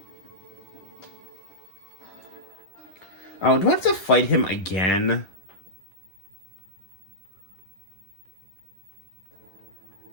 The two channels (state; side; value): late; right; 10 ms